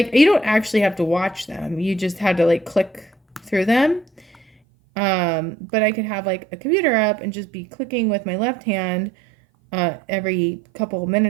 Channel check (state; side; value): drops out; left; at 4.5 s